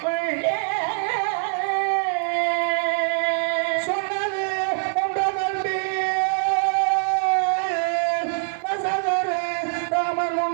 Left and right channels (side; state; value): left; silent; digital silence